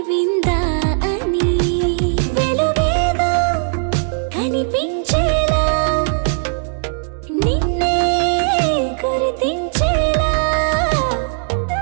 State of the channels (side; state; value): left; silent; 67 dB below the other